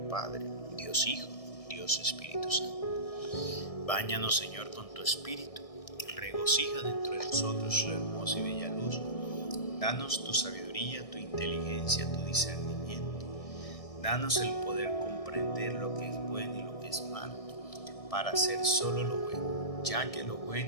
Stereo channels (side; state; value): right; late; 1.6 ms